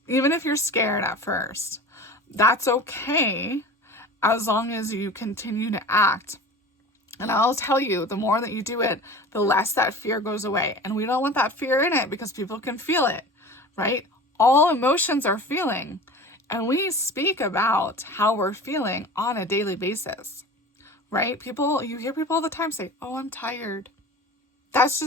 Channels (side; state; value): both; normal; correlation 0.37